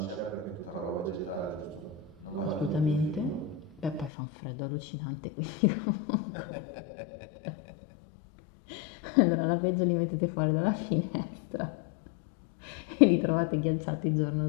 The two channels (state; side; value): drops out; right; at 4.1 s